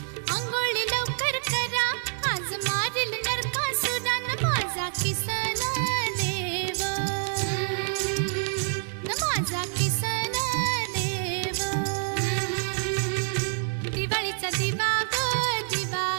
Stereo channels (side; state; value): left; silent; 60 dB below the other